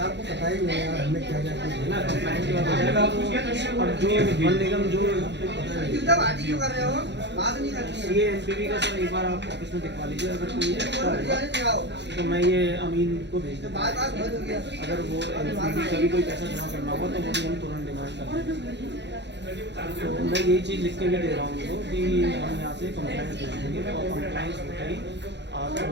पता ही नहीं है हमें क्या क्या है ना, कंप्लायंस के बाद हो जाएगा। और जो वन निगम जो CANPV का सर एक बार आप ऑफिस में दिखवा लीजिए। अगर कोई है तो मैं ये अमीन को भेज दूँगा। अगर वो NPV का भी कोई पैसा जमा करना होगा तो वो भी हम तुरंत डिमांड करेंगे। तो मैं यही चीज़ लिख के भी दे रहा हूँ उनको कि हम यहाँ से कंप्लायंस भेज देंगे और कंप्लायंस होते ही आप जो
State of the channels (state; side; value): late; left; 0.51 ms